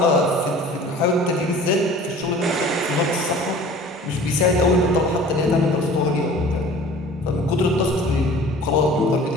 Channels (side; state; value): both; normal; correlation 0.45